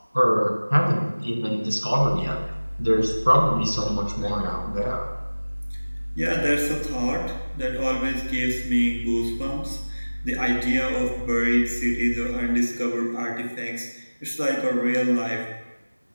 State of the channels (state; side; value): inverted; both; correlation -1.00